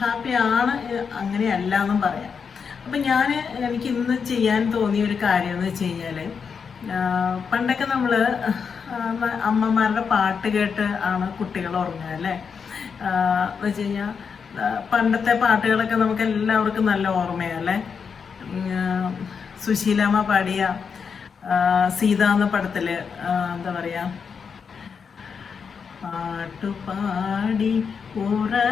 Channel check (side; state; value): right; quieter; 6.1 dB